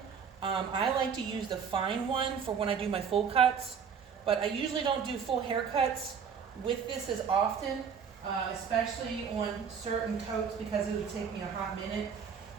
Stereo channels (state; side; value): quieter; left; 6.7 dB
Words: I like to use the fine one for when I do my full cuts, but I usually don't do full haircuts with this as often, especially on certain coats because it would take me a hot minute.